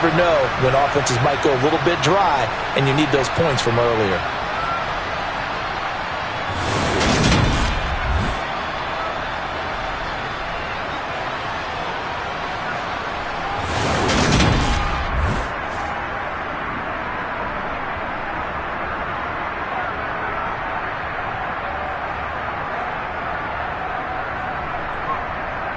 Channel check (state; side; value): identical; both; correlation 1.00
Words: know when offenses might go a little bit dry, and you need those points from earlier.